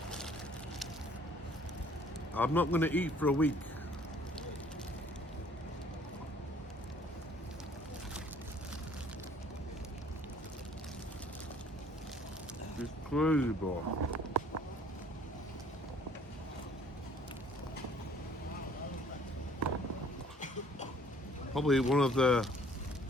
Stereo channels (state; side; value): normal; both; correlation 0.57